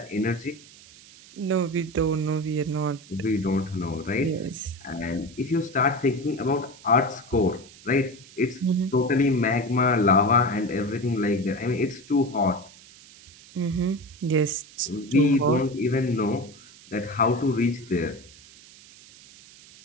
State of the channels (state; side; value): noise; right; hiss, 22 dB below the sound